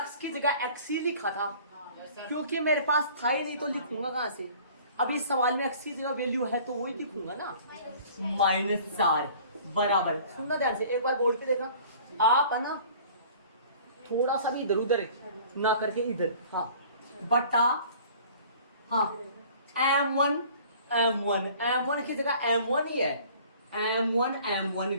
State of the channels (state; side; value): inverted; both; correlation -0.49